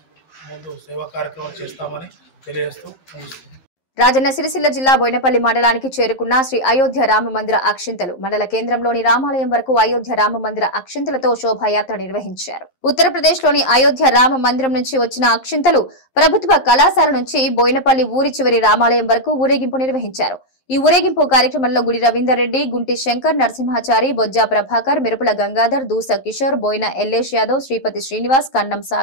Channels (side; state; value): right; late; 11 ms